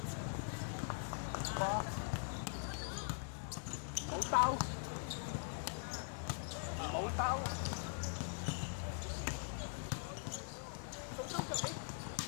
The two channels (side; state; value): right; silent; digital silence